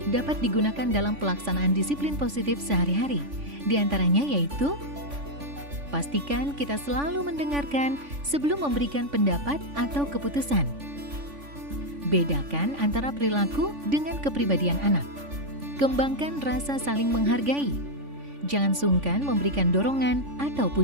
dapat digunakan dalam pelaksanaan disiplin positif sehari-hari. Di antaranya yaitu, pastikan kita selalu mendengarkan sebelum memberikan pendapat atau keputusan. Bedakan antara perilaku dengan kepribadian anak. Kembangkan rasa saling menghargai. Jangan sungkan memberikan dorongan atau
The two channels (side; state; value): left; late; 3.5 ms